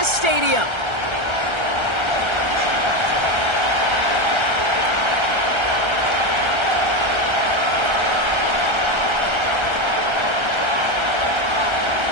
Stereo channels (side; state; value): left; late; 1.3 ms